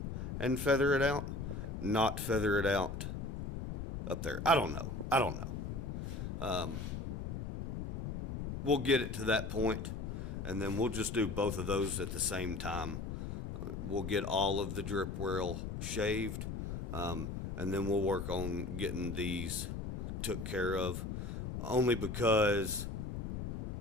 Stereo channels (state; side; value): noise; left; rumble, 5 dB below the sound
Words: and feather it out, not feather it out up there. I don't know. We'll get it to that point, and then we'll just do both of those at the same time. We'll get all of the drip rail shaved, and then we'll work on getting these took care of, only because